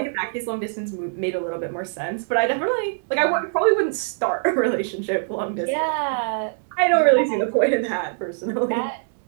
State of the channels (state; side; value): silent; left; digital silence